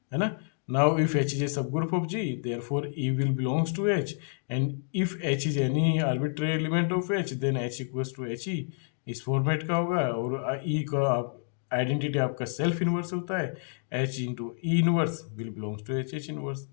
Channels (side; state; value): right; silent; 59 dB below the other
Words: है ना। Now if H is a subgroup of G, therefore E will belongs to H, and if H is any arbitrary element of H, then H equals to H E. इस फॉर्मेट का होगा। और ई का आइडेंटिटी आपका सेल्फ इनवर्स होता है, H into E inverse will belongs to H H inverse.